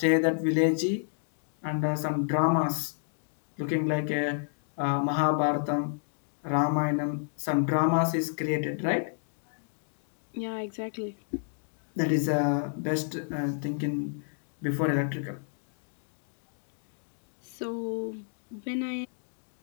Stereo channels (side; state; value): right; silent; digital silence